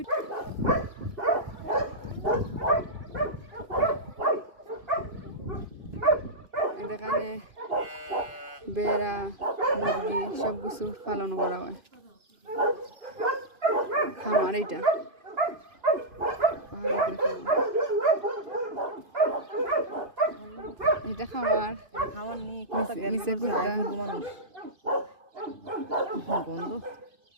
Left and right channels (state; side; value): late; left; 2.5 ms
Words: এখানে বেড়া মুরগি সব কিছু পালন করা হয়। খামার এইটা পাহাড়ি খামার, এটা খামার খাওয়ার নেই নিচে কুত্তা। মানুষ গন্ধ